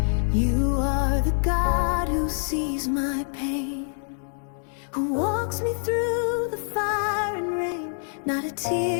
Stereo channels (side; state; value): right; silent; 61 dB below the other